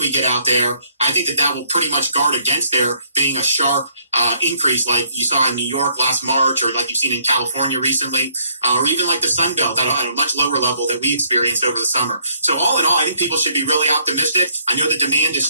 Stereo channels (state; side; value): inverted; both; correlation -0.67